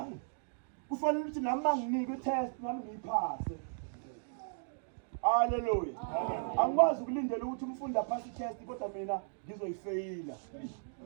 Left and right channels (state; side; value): silent; left; digital silence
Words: Kufanele ukuthi nami manginike i-test nami ngiyiphase. Haleluya. Angikwazi ukulindela ukuthi umfundi aphase i-test kodwa mina ngizoyifeyila.